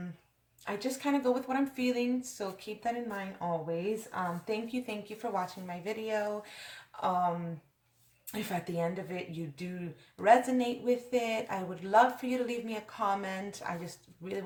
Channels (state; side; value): identical; both; correlation 1.00